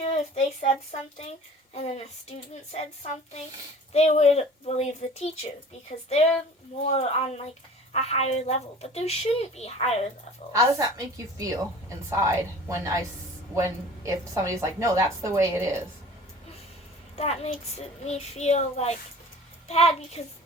if they said something and then a student said something, they would believe the teacher because they're more on like a higher level. But there shouldn't be higher levels. How does that make you feel inside if somebody's like, no, that's the way it is? That makes me feel like bad because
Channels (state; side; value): normal; both; correlation 0.44